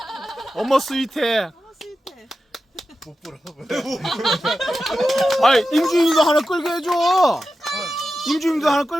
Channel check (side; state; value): both; normal; correlation 0.92